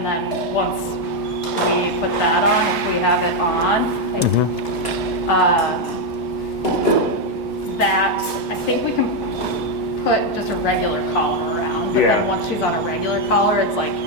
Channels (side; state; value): both; normal; correlation 0.03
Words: then once we put that on, if we have it on. That I think we can put just a regular collar around, but then once she's on a regular collar, it's like